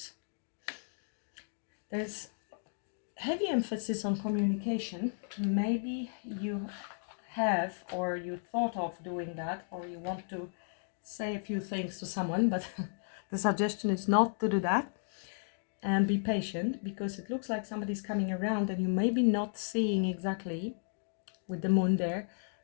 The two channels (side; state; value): right; silent; digital silence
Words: There's heavy emphasis on communication. Maybe you have, or you thought of doing that, or you want to say a few things to someone, but the suggestion is not to do that. And be patient, because it looks like somebody's coming around and you may be not seeing exactly, with the moon there,